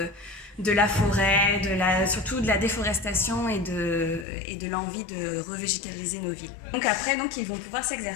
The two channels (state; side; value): drops out; right; at 4.2 s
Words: la forêt, surtout de la déforestation et de l'envie de revégétaliser nos villes. Donc après, ils vont pouvoir